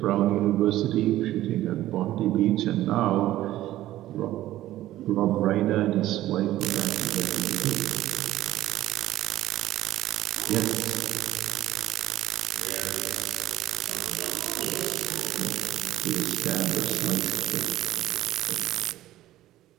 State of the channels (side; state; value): left; quieter; 14.6 dB